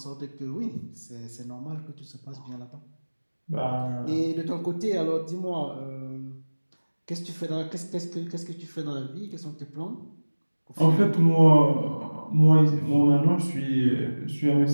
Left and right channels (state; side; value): inverted; both; correlation -1.00